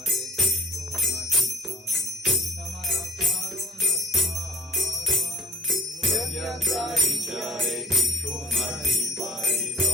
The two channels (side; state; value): both; normal; correlation 0.49